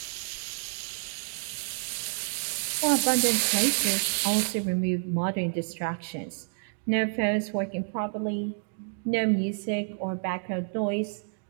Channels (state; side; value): silent; left; digital silence